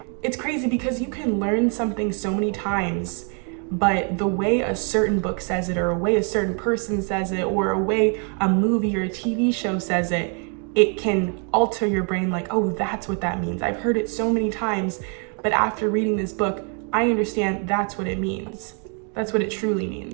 It's crazy because you can learn something so many times, but the way a certain book says it, or a way a certain person says it, or a way a movie or a TV show says it, it can alter your brain like, oh, that's what that means. I've heard it so many times, but after reading this book, I understand that's what it means. That's what it truly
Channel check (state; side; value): quieter; left; 39.7 dB